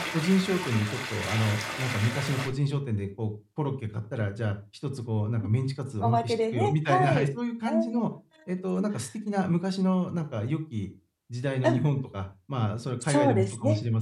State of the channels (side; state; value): both; identical; correlation 1.00